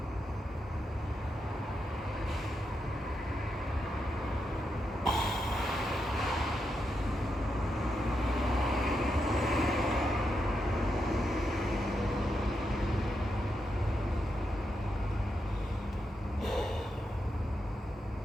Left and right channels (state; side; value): normal; both; correlation 0.84